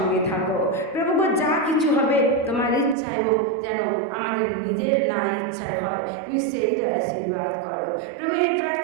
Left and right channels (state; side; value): drops out; left; at 3.0 s